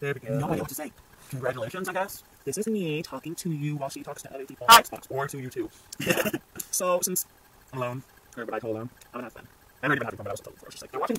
no idea what to say. Congratulations, I guess. This is me talking to you while she talks to other people Hi. on Xbox, or to you too. So, since I'm alone, or but I told them, I'm gonna have fun. I already been having fun, but I was told before. It's just like, they're watching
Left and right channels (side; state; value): both; identical; correlation 1.00